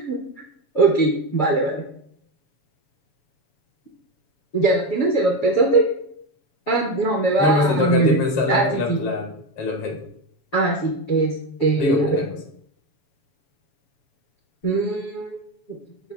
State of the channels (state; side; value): late; right; 7.1 ms